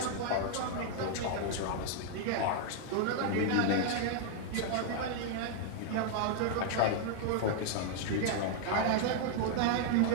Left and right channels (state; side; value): different; both; correlation -0.01